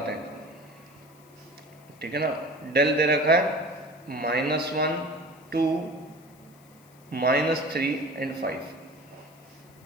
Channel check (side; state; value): left; noise; hiss, 28 dB below the sound